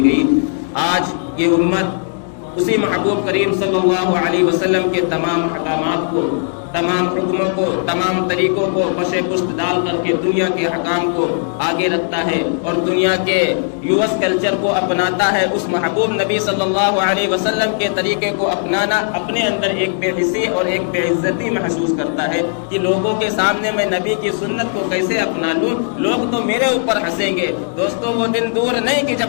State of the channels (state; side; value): silent; right; 64 dB below the other